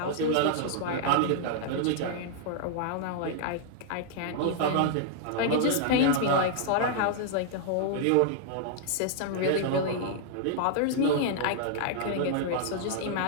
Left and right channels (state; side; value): different; both; correlation -0.01